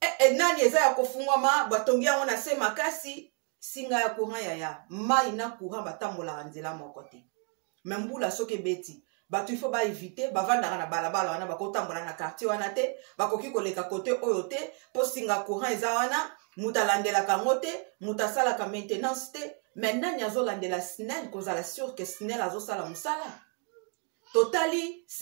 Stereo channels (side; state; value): left; quieter; 38.7 dB